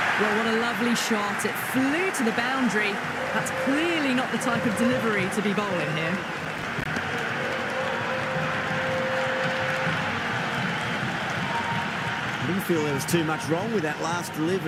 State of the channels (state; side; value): identical; both; correlation 1.00